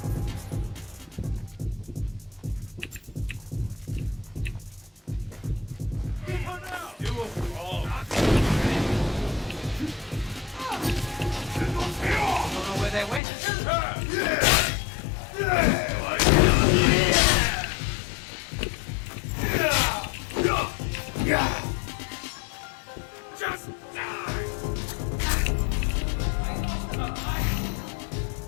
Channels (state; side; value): drops out; right; at 13.2 s